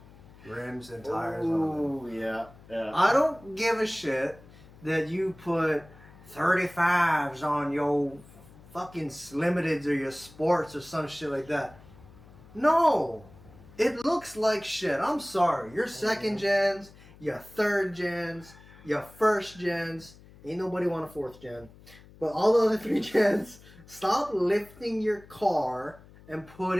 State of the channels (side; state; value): left; noise; hum, 22 dB below the sound